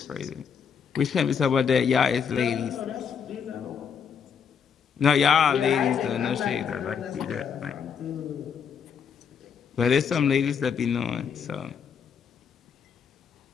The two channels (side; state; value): right; quieter; 6.9 dB